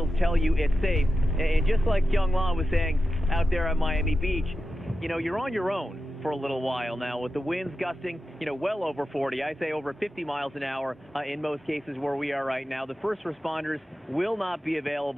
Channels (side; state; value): both; normal; correlation 0.91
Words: tell you it's safe. And just like Kyung-la was saying out there at Miami Beach, you know, you're on your own for a little while now with the winds gusting, you know, well over 40. I say over 50 miles an hour in most cases where we are right now. The first responders will not be